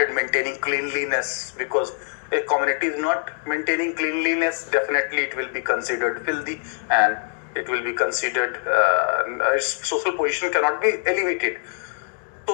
maintaining cleanliness, because a community is not maintaining cleanliness, definitely it will be considered filthy, and it will be considered its social position cannot be elevated.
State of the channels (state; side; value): silent; right; 63 dB below the other